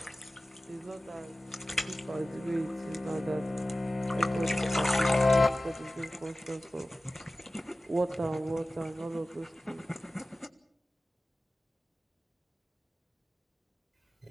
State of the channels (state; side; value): normal; both; correlation 0.96